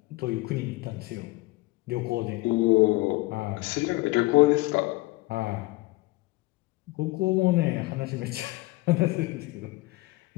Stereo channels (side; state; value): right; quieter; 21.3 dB